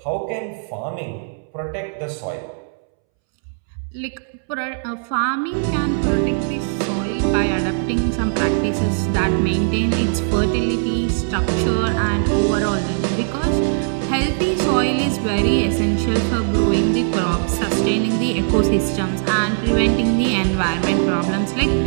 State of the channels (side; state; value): left; silent; 66 dB below the other